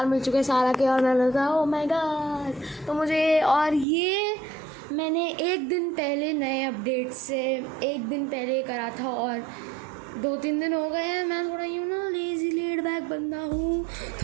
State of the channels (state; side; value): drops out; left; at 3.9 s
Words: मिल चुके हैं सारा के। और मैं लगा ओह माय गॉड, तो मुझे और ये मैंने एक दिन पहले नए अपडेट से एक दिन पहले करा था और 2-3 दिन हो गए हैं। मैं थोड़ा लेज़ी लेड बैक बंदा हूँ,